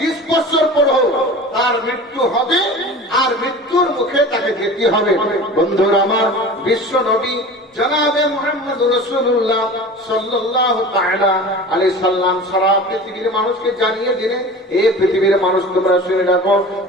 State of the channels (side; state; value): both; normal; correlation 0.37